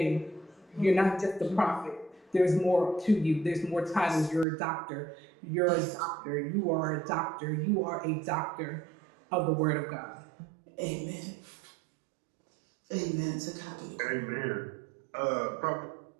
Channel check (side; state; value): left; drops out; at 4.5 s